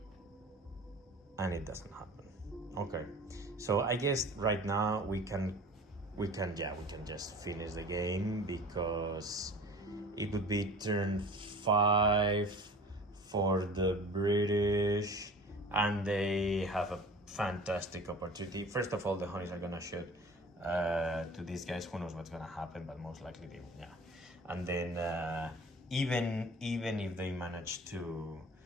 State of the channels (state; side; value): normal; both; correlation 0.42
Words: and it doesn't happen. Okay. So I guess right now we can just finish the game because it would be turn 5 for the British, and they have a fantastic opportunity. First of all, the Honeys are gonna shoot to these guys. Who knows what's gonna happen, but most likely they will. Yeah. And then even if they manage to